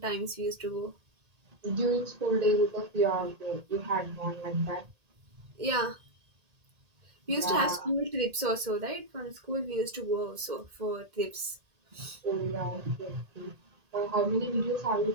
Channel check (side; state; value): left; late; 1.8 ms